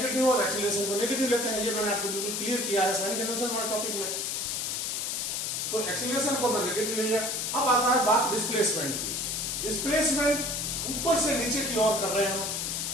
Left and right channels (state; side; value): noise; left; hiss, 1 dB below the sound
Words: और एक्सीलरेशन को नेगेटिव लेते हैं, ये मैंने आपको बिल्कुल क्लियर किया है साइन कन्वेंशन वाले टॉपिक में। तो एक्सीलरेशन को मैं नेगेटिव ले लिया। अब आता है बात डिस्प्लेसमेंट की, डिस्प्लेसमेंट ऊपर से नीचे की ओर कर रहे हैं।